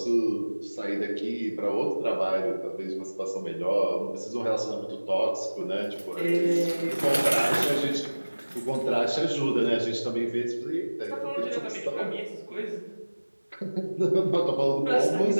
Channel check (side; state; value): both; inverted; correlation -1.00